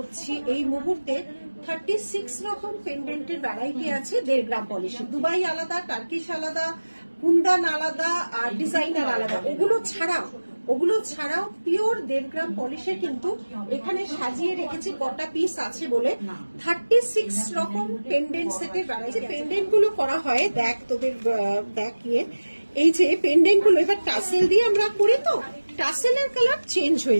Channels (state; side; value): inverted; both; correlation -1.00